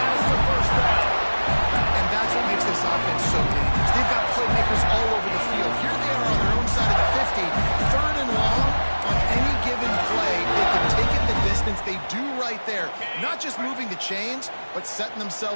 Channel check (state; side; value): inverted; both; correlation -1.00